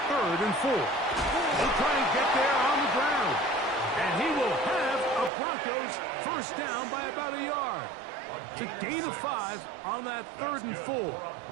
3rd and 4. He'll try and get there on the ground. And he will have a Broncos first down by about a yard. It's a gain of 5 on that 3rd and 4.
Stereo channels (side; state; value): left; drops out; at 5.3 s